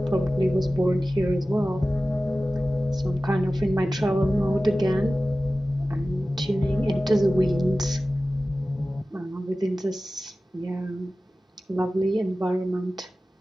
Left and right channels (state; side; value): normal; both; correlation 0.96